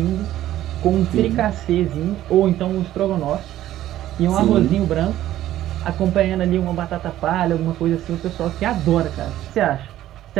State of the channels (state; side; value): quieter; left; 13.4 dB